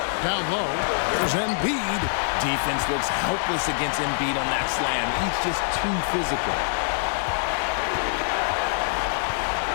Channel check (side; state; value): right; silent; digital silence